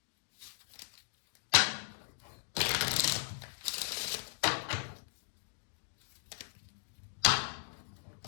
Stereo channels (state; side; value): silent; right; digital silence